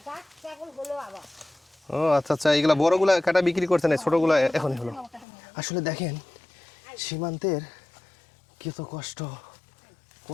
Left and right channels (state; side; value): drops out; right; at 5.2 s